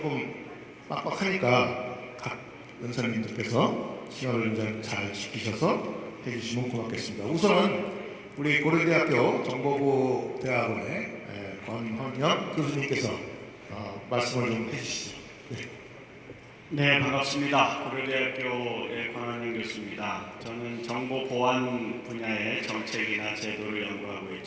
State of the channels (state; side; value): identical; both; correlation 1.00